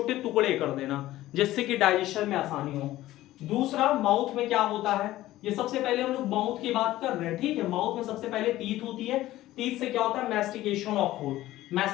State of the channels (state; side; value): quieter; right; 15.6 dB